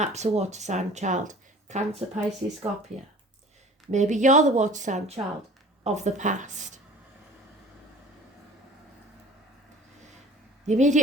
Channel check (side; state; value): both; normal; correlation 0.46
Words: a water sign child, Cancer, Pisces, Scorpio. Maybe you're the water sign child of the past. The